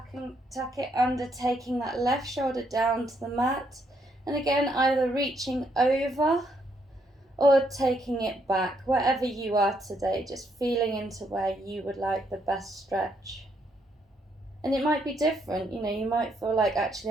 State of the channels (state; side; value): normal; both; correlation 0.73